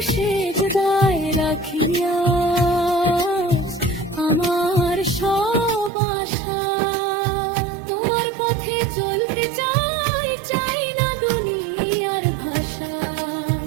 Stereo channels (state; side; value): drops out; left; at 5.9 s